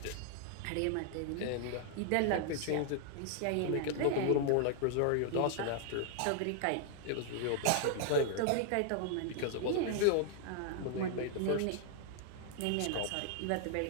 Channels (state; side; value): different; both; correlation -0.01